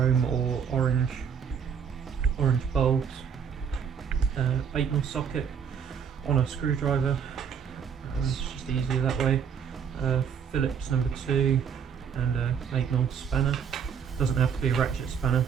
or orange bulbs, 8mm socket on a screwdriver, it's just easier that way, Phillips number 2 and a 8mm spanner. Doesn't have to be a ratchet spanner,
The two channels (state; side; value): quieter; left; 7.5 dB